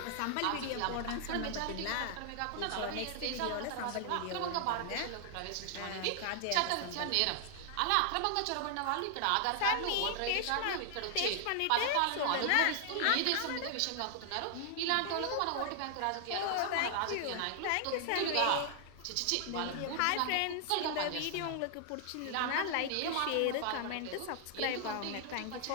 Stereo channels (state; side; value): different; both; correlation 0.00